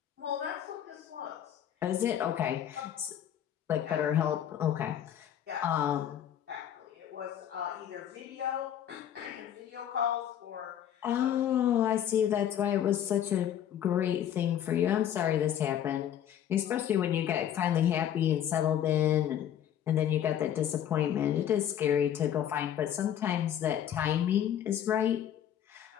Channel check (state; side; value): quieter; right; 10.1 dB